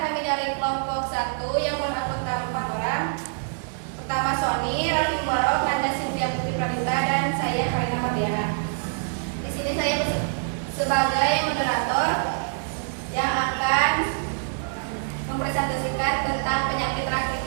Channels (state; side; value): silent; left; 62 dB below the other